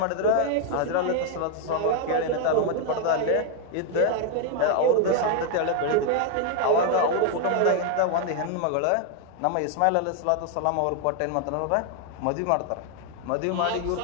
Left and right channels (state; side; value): different; both; correlation 0.01